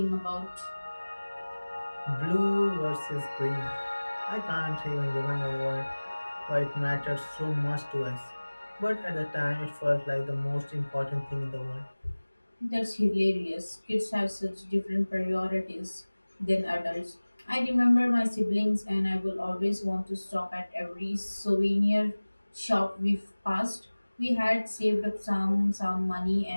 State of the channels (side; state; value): both; inverted; correlation -1.00